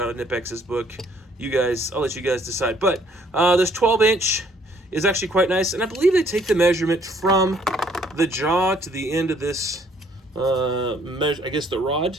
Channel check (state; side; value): normal; both; correlation 0.63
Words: of Knipex's book. I'll let you guys decide. But this 12-inch is actually quite nice, and I believe they take the measurement from the jaw to the end of this, I guess the rod